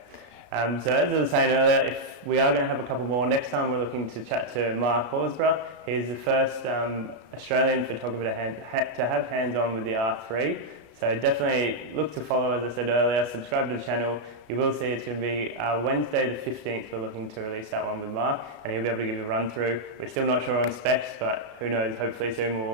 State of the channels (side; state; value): left; late; 33 ms